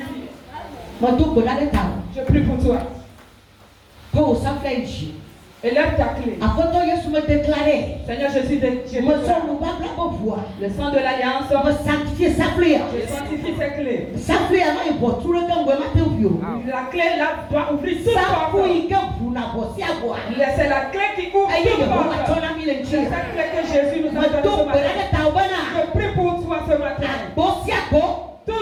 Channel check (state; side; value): identical; both; correlation 1.00